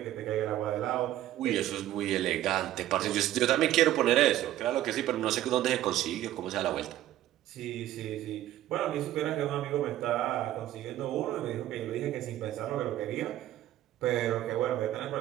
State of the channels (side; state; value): left; quieter; 13.5 dB